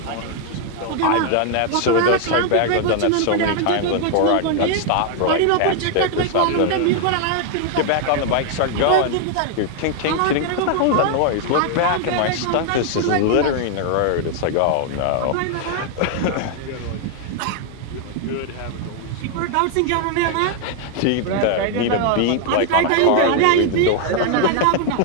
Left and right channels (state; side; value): different; both; correlation 0.00